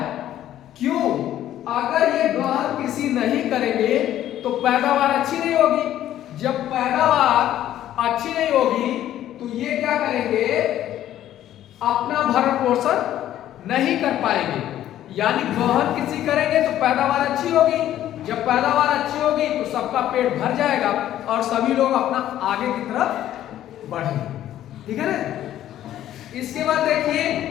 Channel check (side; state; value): right; quieter; 12.3 dB